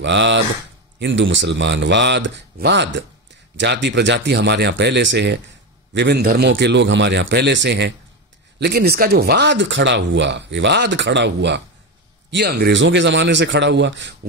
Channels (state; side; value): normal; both; correlation 0.16